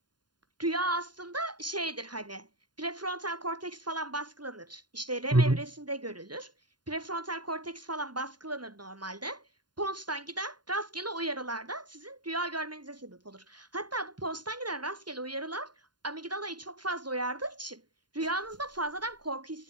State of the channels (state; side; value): late; left; 0.70 ms